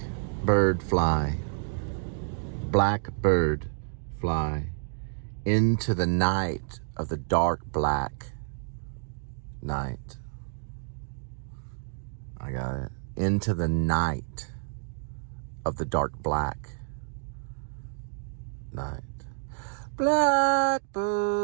fly. Blackbird fly into the night of the dark black night. I got it. Into the night of the dark black night.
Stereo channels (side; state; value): left; silent; digital silence